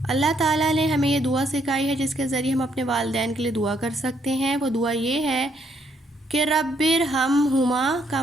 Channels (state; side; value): normal; both; correlation 0.72